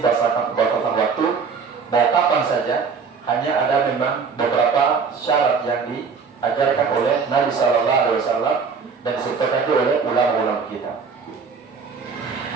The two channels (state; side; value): quieter; left; 5.4 dB